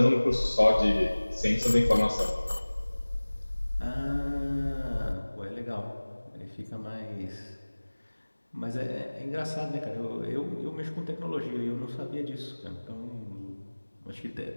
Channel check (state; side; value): inverted; both; correlation -1.00